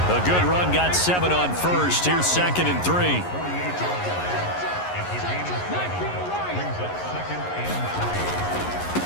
A good run, got 7 on first. Here's 2nd and 3.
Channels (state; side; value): late; right; 11 ms